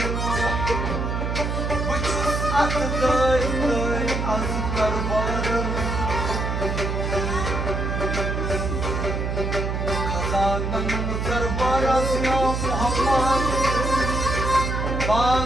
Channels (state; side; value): noise; right; hum, 1 dB below the sound